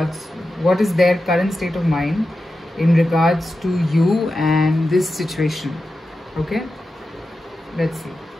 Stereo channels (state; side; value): normal; both; correlation 0.91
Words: what is their current state of mind in regards to you and this situation. Okay, let's see.